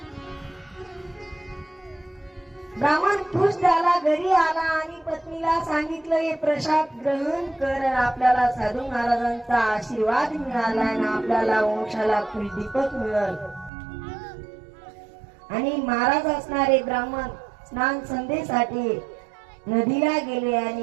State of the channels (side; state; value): left; drops out; at 13.7 s